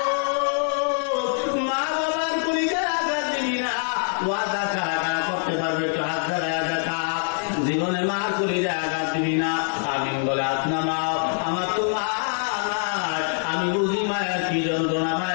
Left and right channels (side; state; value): right; silent; 62 dB below the other